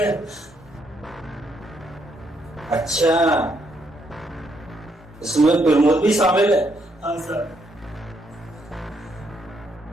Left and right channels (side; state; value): both; normal; correlation 0.74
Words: अच्छा, इसमें प्रमोद भी शामिल है? हाँ सर।